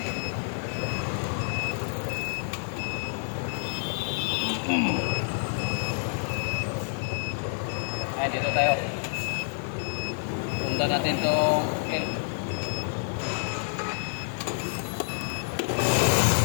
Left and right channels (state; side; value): silent; right; 59 dB below the other